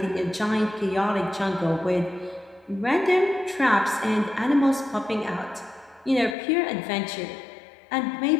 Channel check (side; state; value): right; drops out; at 6.4 s